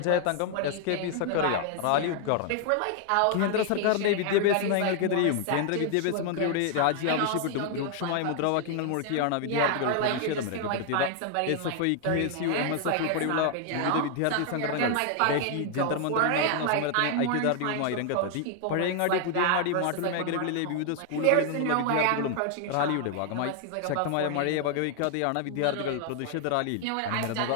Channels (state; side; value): different; both; correlation 0.00